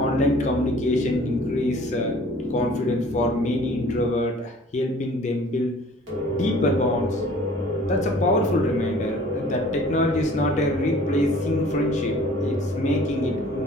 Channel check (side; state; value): both; normal; correlation 0.50